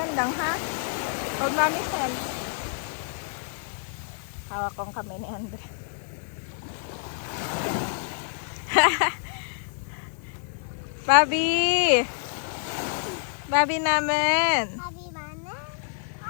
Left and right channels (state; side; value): silent; right; 60 dB below the other